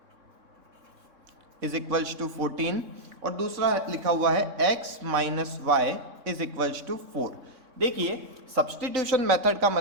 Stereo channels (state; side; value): late; left; 3.6 ms